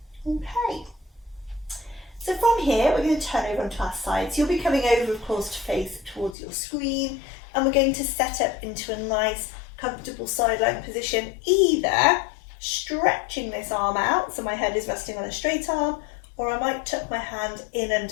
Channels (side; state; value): right; drops out; at 6.4 s